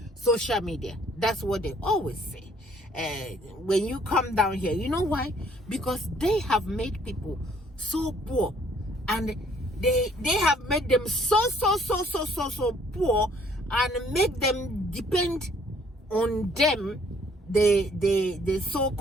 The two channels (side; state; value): both; normal; correlation 0.62